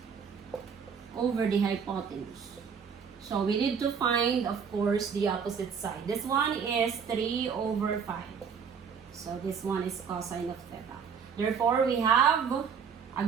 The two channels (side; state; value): left; quieter; 6.6 dB